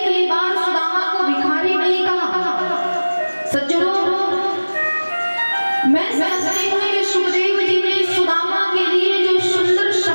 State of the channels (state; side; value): inverted; both; correlation -1.00